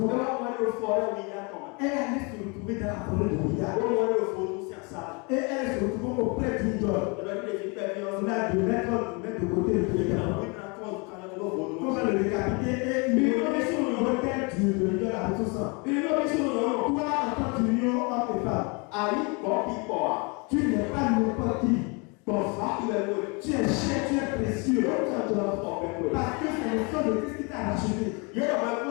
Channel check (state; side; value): quieter; right; 31.2 dB